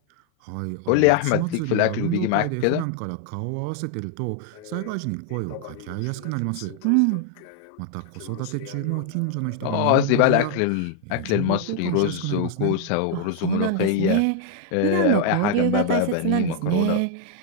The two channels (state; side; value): different; both; correlation 0.00